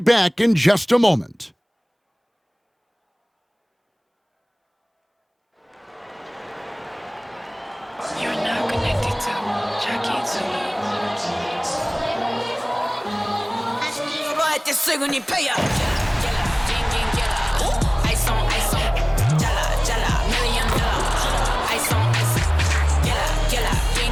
back in just a moment. You're now connected to Jackie Zulu.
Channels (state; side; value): identical; both; correlation 1.00